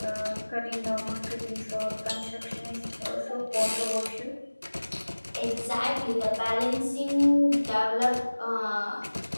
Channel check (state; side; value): inverted; both; correlation -1.00